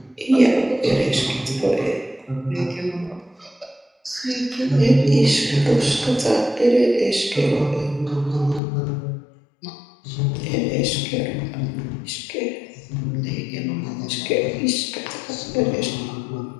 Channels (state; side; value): drops out; right; at 8.6 s